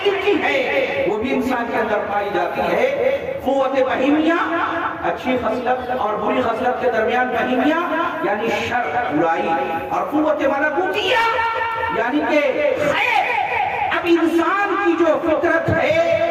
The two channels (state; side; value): identical; both; correlation 1.00